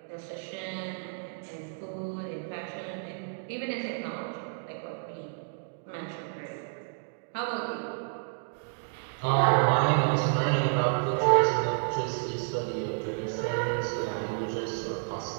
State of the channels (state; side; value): silent; left; digital silence